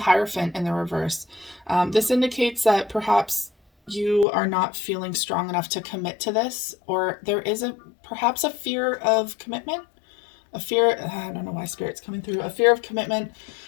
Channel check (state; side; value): drops out; right; at 4.2 s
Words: in the reverse. This indicates that perhaps you are not feeling strong enough to commit to this, or there is perhaps a fear of commitment. I don't know why Spirit's coming through. A fear of commitment.